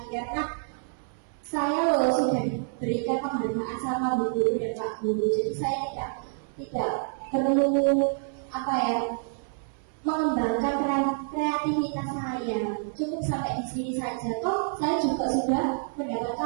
karena saya sudah diberikan penghargaan sama bu guru dan pak guru. Jadi saya tidak perlu mengembangkan kreativitas saya. Cukup sampai di sini saja. Toh saya juga sudah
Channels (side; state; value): left; silent; 59 dB below the other